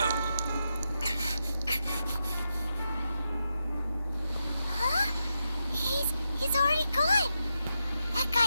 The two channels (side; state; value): both; inverted; correlation -0.86